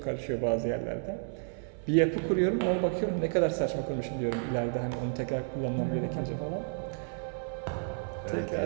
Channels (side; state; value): left; silent; 57 dB below the other